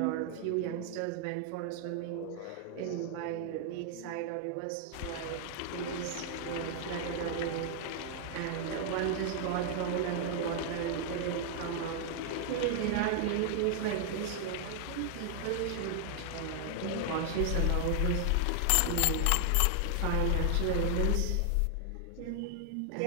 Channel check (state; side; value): different; both; correlation 0.00